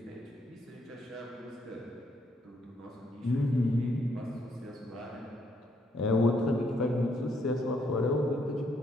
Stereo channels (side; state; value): both; normal; correlation 0.72